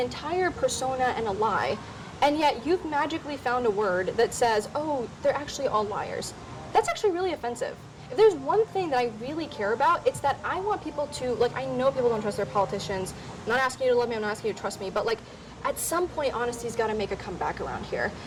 persona and a lie, and yet you've magically found a word that says, oh, they're actually all liars. That's actually really offensive. If there's one thing that I really care about, it's that I want people to, like, I know people don't trust their politicians. I'm not asking you to love me, I'm not asking you to trust me, but, like, at some point, honesty's got to make a comeback around here.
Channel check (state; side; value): identical; both; correlation 1.00